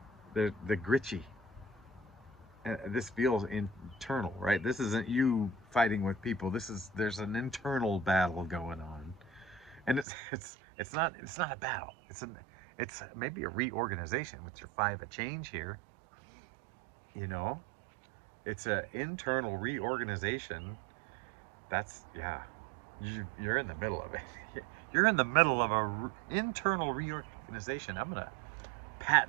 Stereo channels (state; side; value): drops out; left; at 10.1 s